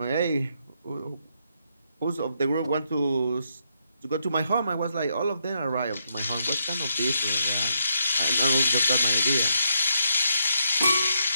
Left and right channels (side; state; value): both; inverted; correlation -0.78